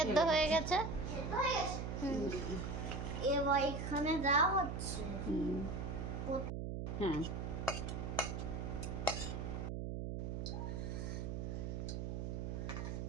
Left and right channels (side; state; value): right; noise; hum, 3 dB below the sound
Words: ঢেলে হয়ে গেছে। সেদ্ধ হয়ে গেছে? এবার এখানে দেওয়া হচ্ছে। হ্যাঁ,